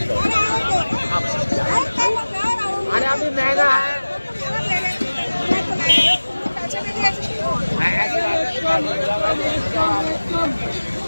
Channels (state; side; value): inverted; both; correlation -1.00